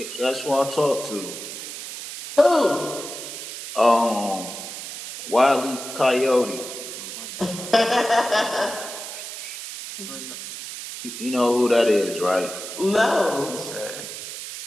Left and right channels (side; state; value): right; noise; hiss, 9 dB below the sound